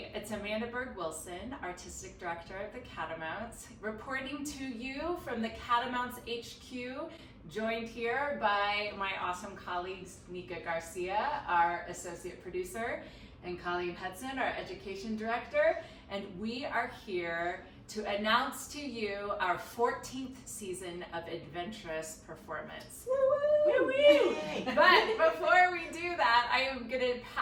it's Amanda Berg-Wilson, Artistic Director of the Catamounts, reporting to you from the Catamounts HQ, joined here by my awesome colleagues, Nika Garcia, our Associate Producer, and Colleen Hudson, our Education Director, and we are here to announce to you our 14th season of Adventurous performance. Woo-woo! Woo-woo! But before we do that, I am going to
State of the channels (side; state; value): both; identical; correlation 1.00